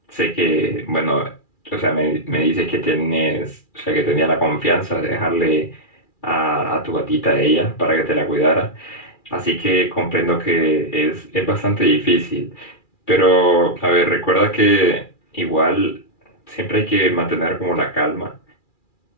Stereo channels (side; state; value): right; late; 2.4 ms